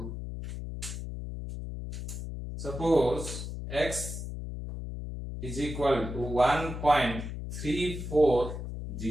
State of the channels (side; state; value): left; noise; hum, 7 dB below the sound